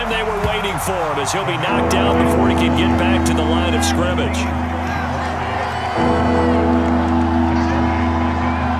they were waiting for him as he'll be knocked down before he can get back to the line of scrimmage.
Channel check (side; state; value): both; identical; correlation 1.00